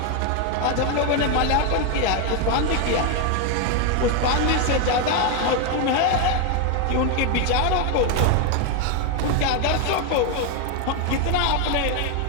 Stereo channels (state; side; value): different; both; correlation 0.01